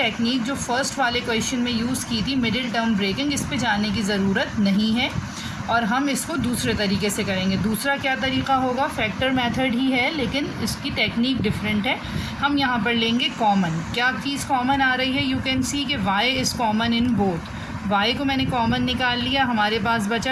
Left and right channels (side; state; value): both; identical; correlation 1.00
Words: जो फर्स्ट वाले क्वेश्चन में यूज़ की थी मिडिल टर्म ब्रेकिंग, इस पे जाने की ज़रूरत नहीं है और हम इसको दूसरे तरीके से करेंगे। दूसरा क्या तरीका होगा, फैक्टर मेथड ही है लेकिन इसकी टेक्निक डिफरेंट है। हम यहाँ पर लेंगे कॉमन। क्या चीज़ कॉमन आ रही है, यू कैन सी कि y is common in both. y को मैंने कॉमन निकाल लिया, हमारे पास